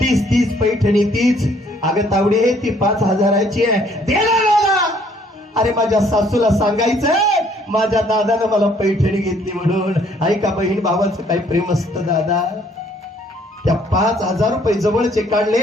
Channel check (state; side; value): normal; both; correlation 0.63